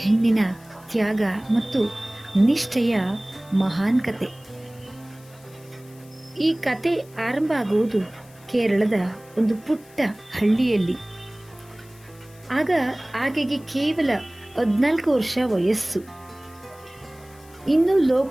ಹೆಣ್ಣಿನ ತ್ಯಾಗ ಮತ್ತು ನಿಷ್ಠೆಯ ಮಹಾನ್ ಕತೆ. ಈ ಕತೆ ಆರಂಭ ಆಗುವುದು ಕೇರಳದ ಒಂದು ಪುಟ್ಟ ಹಳ್ಳಿಯಲ್ಲಿ. ಆಗ ಆಕೆಗೆ ಕೇವಲ 14 ವರ್ಷ ವಯಸ್ಸು. ಇನ್ನೂ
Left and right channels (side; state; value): left; noise; hiss, 26 dB below the sound